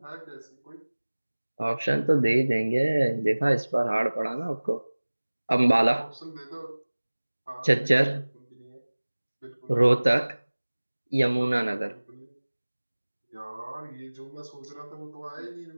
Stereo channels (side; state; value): both; inverted; correlation -1.00